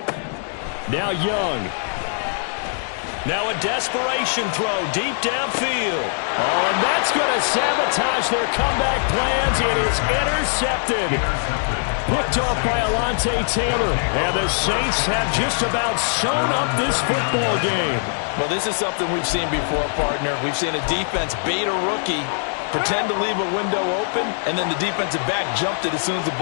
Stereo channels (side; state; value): right; silent; digital silence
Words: Now Young. Now a desperation throw deep downfield. Oh, and that's going to sabotage their comeback plans. It is intercepted. Picked off by Alontae Taylor. And the Saints have just about sewn up this football game. Well, this is something we've seen before, partner. We've seen a defense bait a rookie, pretend to leave a window open, and then the defensive back jumped it as soon as the